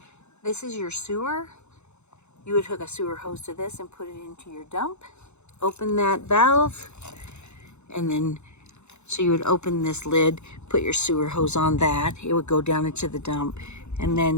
This is your sewer. You would hook a sewer hose to this and put it into your dump. Open that valve, and then so you would open this lid, put your sewer hose on that. It would go down into the dump, and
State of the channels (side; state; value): right; late; 0.82 ms